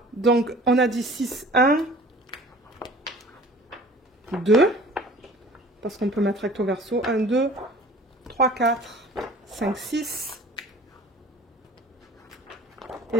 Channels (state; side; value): normal; both; correlation 0.46